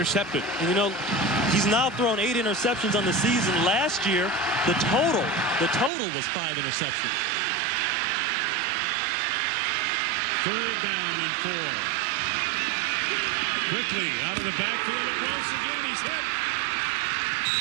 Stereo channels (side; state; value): left; drops out; at 5.9 s